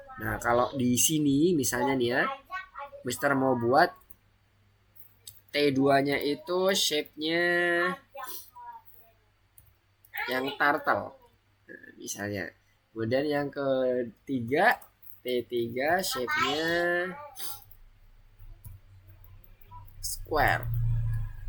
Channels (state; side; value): identical; both; correlation 1.00